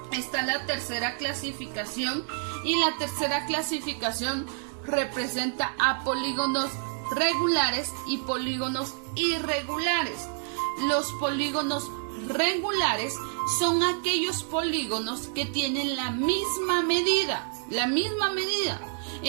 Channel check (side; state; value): left; silent; 57 dB below the other